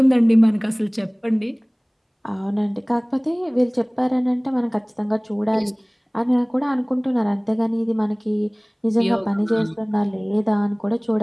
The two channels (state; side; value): identical; both; correlation 1.00